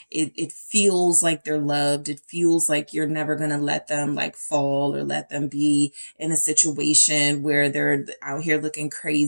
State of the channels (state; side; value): inverted; both; correlation -1.00